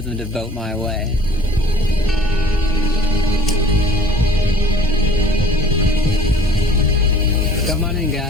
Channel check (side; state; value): both; normal; correlation 0.49